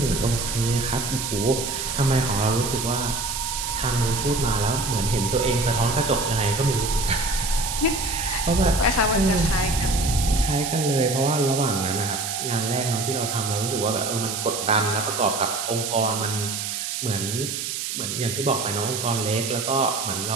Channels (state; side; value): noise; right; hiss, 4 dB below the sound